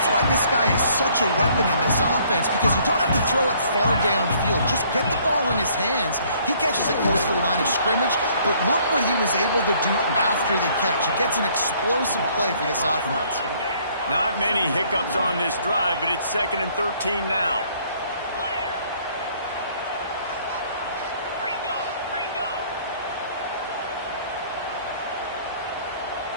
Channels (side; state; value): both; inverted; correlation -0.61